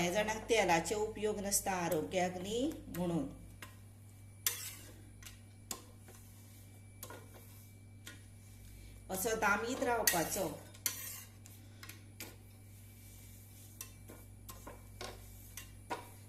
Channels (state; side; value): identical; both; correlation 1.00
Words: जाणांक तेलाचे उपयोग नासता आरोग्याक न्ही म्हणून। असो दामीत रावपाचो।